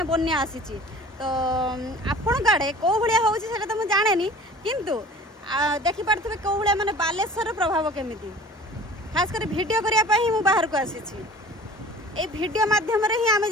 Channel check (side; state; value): both; normal; correlation 0.44